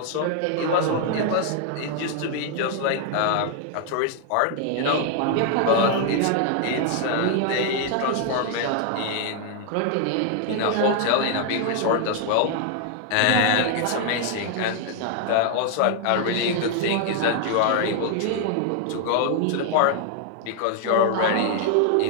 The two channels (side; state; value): both; different; correlation 0.00